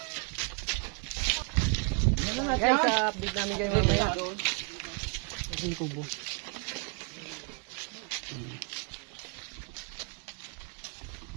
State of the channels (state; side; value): quieter; left; 36.2 dB